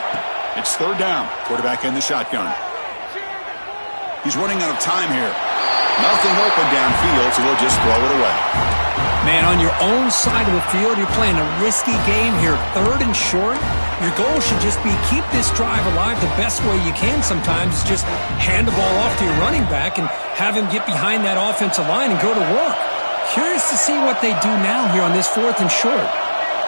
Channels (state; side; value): inverted; both; correlation -1.00